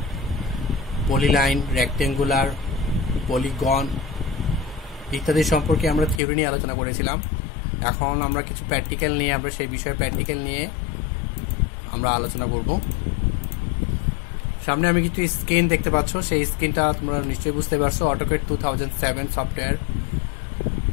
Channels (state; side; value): drops out; right; at 6.2 s